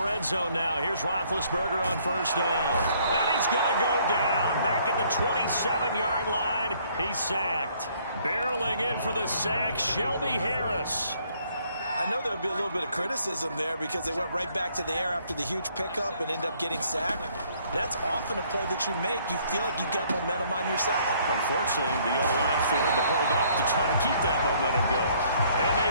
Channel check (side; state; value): both; inverted; correlation -0.64